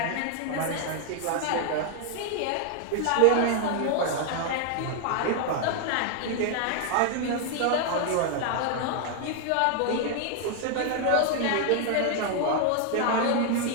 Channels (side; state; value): both; different; correlation 0.00